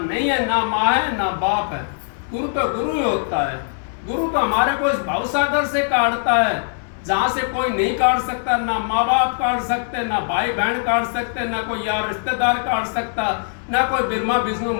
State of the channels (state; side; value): silent; right; 61 dB below the other